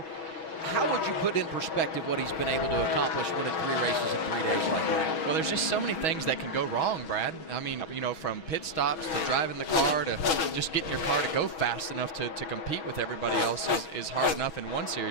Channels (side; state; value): right; late; 6.2 ms